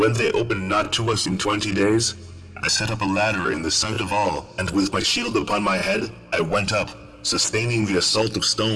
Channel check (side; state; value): both; identical; correlation 1.00